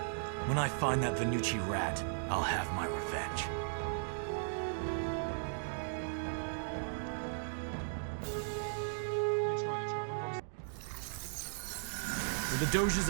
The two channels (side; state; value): left; silent; digital silence